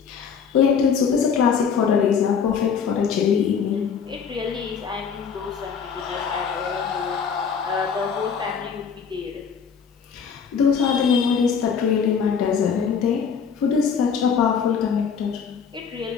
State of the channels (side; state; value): right; quieter; 6.5 dB